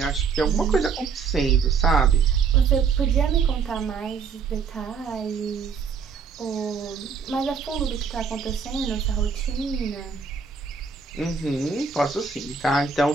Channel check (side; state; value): left; quieter; 5.7 dB